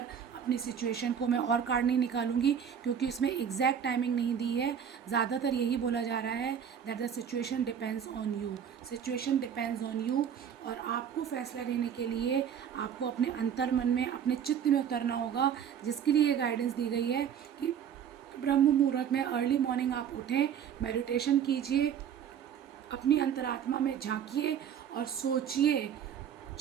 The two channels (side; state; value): left; quieter; 8.4 dB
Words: अपनी सिचुएशन को, मैं और कार्ड नहीं निकालूंगी क्योंकि इसमें एग्जैक्ट टाइमिंग नहीं दी है। ज़्यादातर यही बोला जा रहा है that the situation depends on you, situation depends on you. और आपको फैसला लेने के लिए आपको अपने अंतर मन में, अपने चित्त में उतरना होगा, जिसके लिए ये गाइडेंस दी गई है कि ब्रह्म मुहूर्त में अर्ली मॉर्निंग आप उठें, मेडिटेशन कीजिए, अपनी अंतरात्मा में झांकिए और सोचिए,